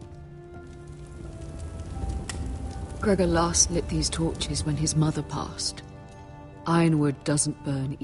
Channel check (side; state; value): both; identical; correlation 1.00